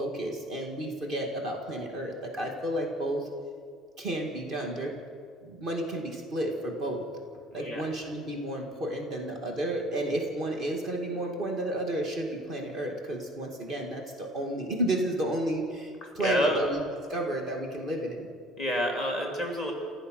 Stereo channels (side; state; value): both; normal; correlation 0.52